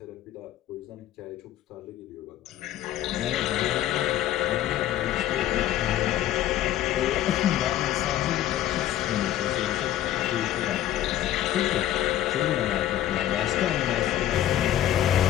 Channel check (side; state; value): right; quieter; 12.7 dB